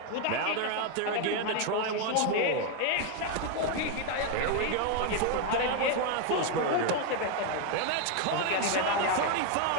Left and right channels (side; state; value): both; different; correlation 0.01